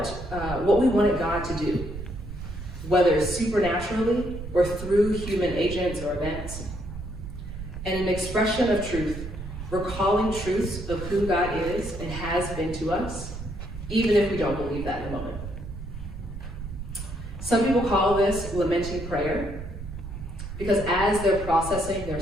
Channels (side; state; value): right; noise; rumble, 9 dB below the sound